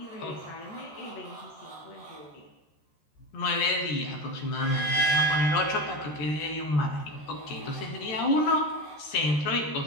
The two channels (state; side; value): late; right; 13 ms